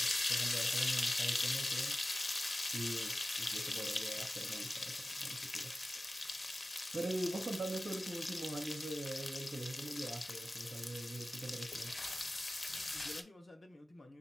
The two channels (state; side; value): normal; both; correlation 0.96